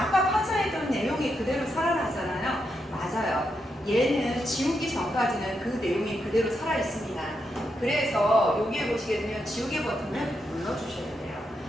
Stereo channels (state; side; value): normal; both; correlation 0.83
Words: 판서했던 내용이 그대로 살아나잖아요. 맞아요. 얘는 지우기 전까지는 그 내용이 그대로 살아 있습니다. 그래서 여기에 보시게 되면 지우개 버튼을 눌러주셔야 돼요.